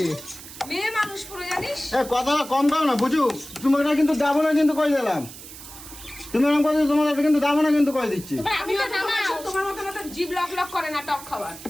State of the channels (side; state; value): right; noise; hiss, 15 dB below the sound